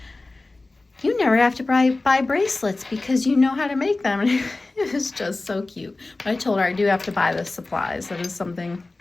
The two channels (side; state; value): right; quieter; 3.2 dB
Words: "You never have to buy bracelets because you know how to make them." And it was just so cute. But I told her I do have to buy the supplies. That is something